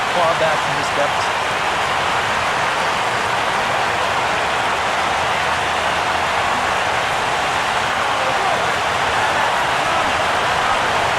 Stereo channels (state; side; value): identical; both; correlation 1.00